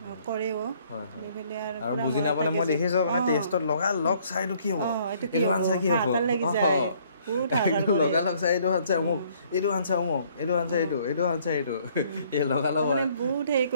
কৰেও আৰু বুজি নাপালে মই দেখিছোঁ মানে টেষ্টত লগালগ চাইটো কি হ'ব এইটো আনচাৰ কি হ'ব লাগি যায় লগালগ চাই এইটো আনচাৰ অমুক এইটো আনচাৰ অমুক এইটো আনচাৰ এইটো এইটো আনচাৰ এইটো এই লগালগ বহুত হেৰি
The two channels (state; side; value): inverted; both; correlation -0.62